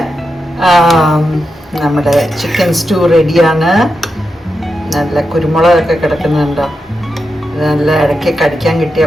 നമ്മുടെ ചിക്കൻ സ്റ്റൂ റെഡിയാണ്. നല്ല കുരുമുളകൊക്കെ കിടക്കുന്നുണ്ടോ. നല്ല ഇടയ്ക്ക് കടിക്കാൻ കിട്ടിയ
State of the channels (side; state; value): both; normal; correlation 0.88